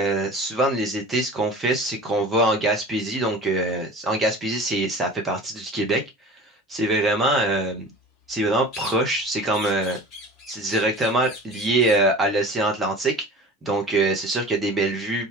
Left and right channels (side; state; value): both; normal; correlation 0.38